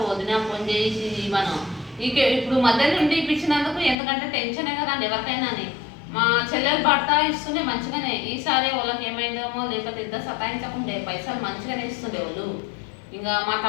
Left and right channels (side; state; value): right; drops out; at 4.0 s